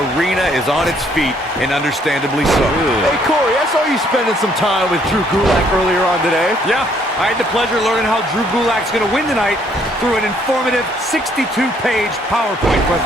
arena is on its feet, and understandably so. Hey, Corey, I saw you spending some time with Drew Gulak earlier on today. Yeah, I had the pleasure of learning how Drew Gulak's going to win tonight through an informative 62-page PowerPoint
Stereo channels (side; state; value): both; normal; correlation 0.66